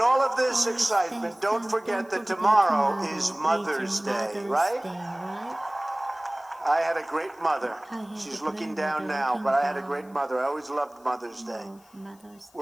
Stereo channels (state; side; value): noise; left; hiss, 29 dB below the sound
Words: all of this excitement, don't forget that tomorrow is Mother's Day, right? I had a great mother. She's looking down now, but I had a great mother. I always loved Mother's Day.